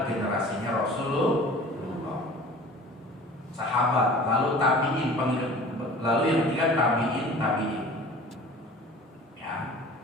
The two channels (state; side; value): normal; both; correlation 0.43